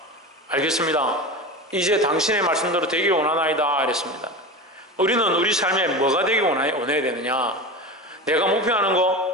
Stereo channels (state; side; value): normal; both; correlation 0.27